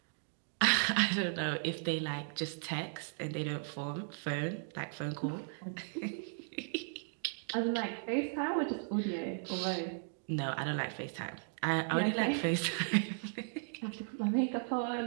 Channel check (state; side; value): silent; left; digital silence